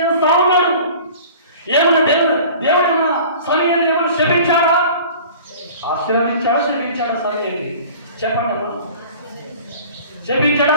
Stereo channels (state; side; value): inverted; both; correlation -0.44